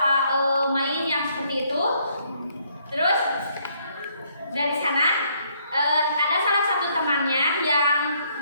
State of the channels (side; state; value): both; inverted; correlation -0.69